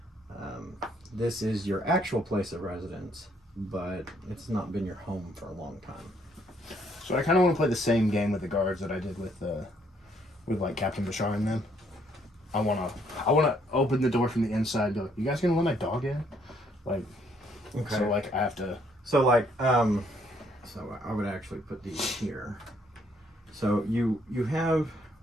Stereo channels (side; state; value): both; normal; correlation 0.68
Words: This is your actual place of residence, but it's not been your home for a long time. so I kind of want to play the same game with the guards that I did with like Captain Bashar and them. I want to open the door from the inside and go, you guys gonna let my dog in? Like, okay. So, like, I have to... So, like, so I would actually put these here. So you have,